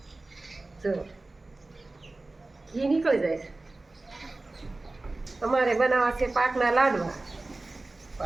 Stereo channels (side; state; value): left; quieter; 3.1 dB